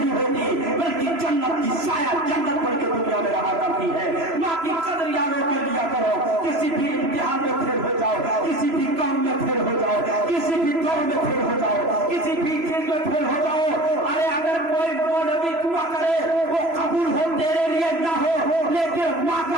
होती बल्कि जन्नत की साया जन्नत पढ़ के दुनिया में रहा करती है। माँ की कदर याद कर लिया करो, किसी भी इम्तिहान में फेल हो जाओ, किसी भी काम में फेल हो जाओ, किसी भी दौड़ में फेल हो जाओ, किसी भी चीज में फेल हो जाओ, अरे अगर कोई मौलवी दुआ करे वो कबूल हो तेरे लिए ना हो, लेकिन माँ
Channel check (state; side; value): late; left; 3.0 ms